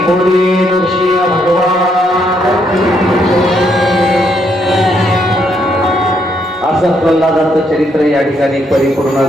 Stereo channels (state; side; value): normal; both; correlation 0.74